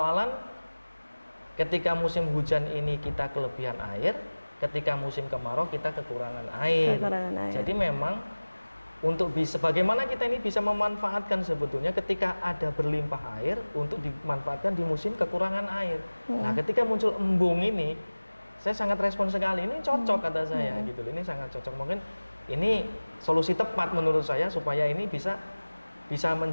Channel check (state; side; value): inverted; both; correlation -1.00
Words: ketika musim hujan ini kita kelebihan air, ketika musim kemarau kita kekurangan air. Jadi memang untuk bagaimana kita ini bisa memanfaatkan sebetulnya ketika ada berlimpah air untuk dimanfaatkan di musim kekurangan air. Nah, ketika muncul embung ini saya sangat respon sekali, ini cocok kata saya gitu, ini sangat cocok. Mungkin ini solusi tepat menurut saya supaya ini bisa